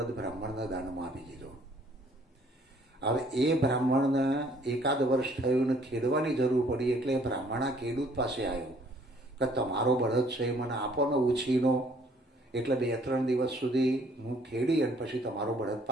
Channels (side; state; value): both; normal; correlation 0.61